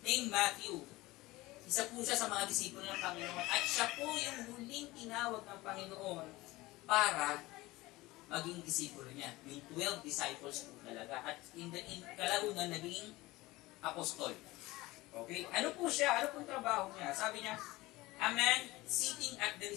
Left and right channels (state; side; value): quieter; right; 19.8 dB